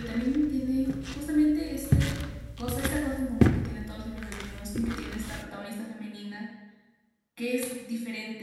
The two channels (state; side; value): identical; both; correlation 1.00